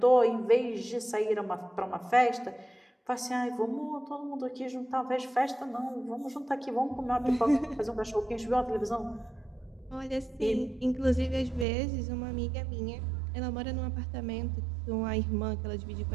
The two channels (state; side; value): drops out; left; at 11.7 s